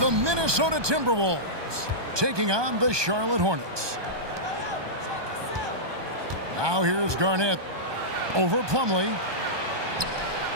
Minnesota Timberwolves taking on the Charlotte Hornets. Now here's Garnett over Plumlee.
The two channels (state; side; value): late; left; 1.2 ms